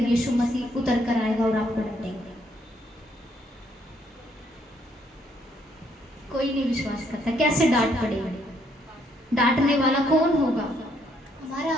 यीशु मसीह उतर कर आएगा और आपको डांटेगा? कोई नहीं विश्वास करता। कैसे डांट पड़ेगी? डांटने वाला कौन होगा? हमारा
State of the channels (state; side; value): normal; both; correlation 0.71